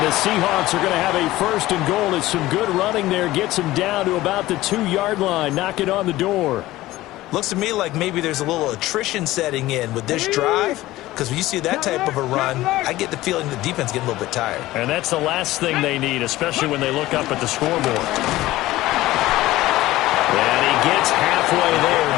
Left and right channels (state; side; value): quieter; right; 16.9 dB